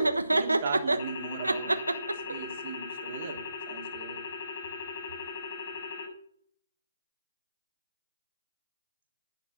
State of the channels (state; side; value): inverted; both; correlation -0.84